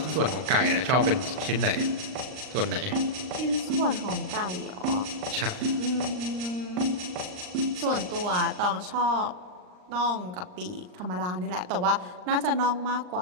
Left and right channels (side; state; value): left; late; 39 ms